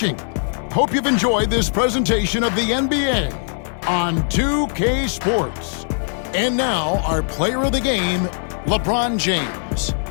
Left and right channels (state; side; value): silent; right; 66 dB below the other